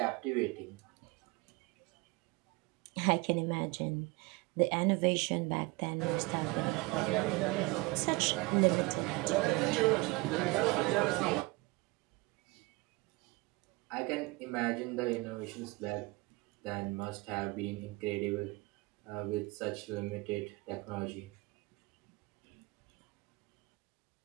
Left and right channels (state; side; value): quieter; left; 23.8 dB